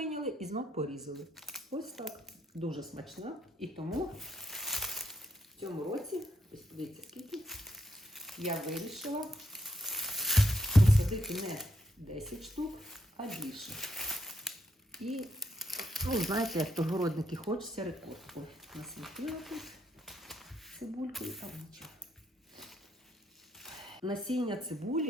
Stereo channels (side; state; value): both; normal; correlation 0.77